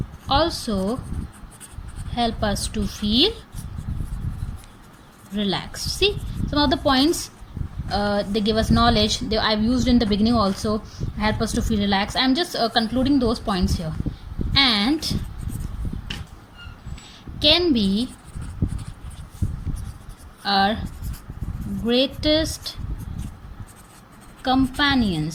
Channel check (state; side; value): identical; both; correlation 1.00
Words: also help us to feel relaxed. See, some of the points they give us knowledge. I've used in the beginning also. Help us to feel relaxed. I'm just concluding those points here. And can be our greatest